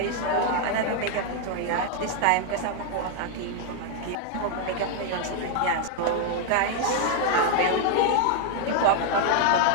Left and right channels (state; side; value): different; both; correlation 0.00